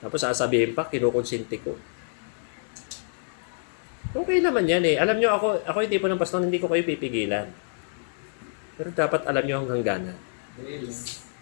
Tapos sasabihin pa, kinukonsinti ko. Okay naman yan eh. Alam niyo ako yung tipo ng pastor, hindi ko kayo pipigilan. Pero dapat alam niyo ang hangganan.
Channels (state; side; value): silent; right; digital silence